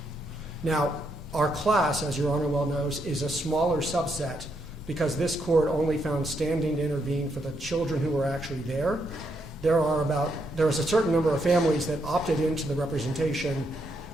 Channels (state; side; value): normal; both; correlation 0.78